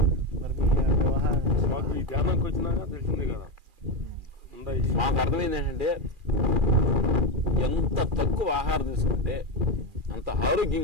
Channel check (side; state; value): left; late; 2.4 ms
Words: మాకు ఈ ధ్యానానికి వచ్చినాక తెలిసింది కదా, మాకు అర్థమైంది ఏంటంటే ఎంత తక్కువ ఆహారం తీసుకుంటే అంత